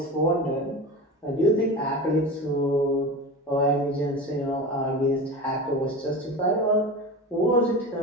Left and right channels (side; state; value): both; normal; correlation 0.29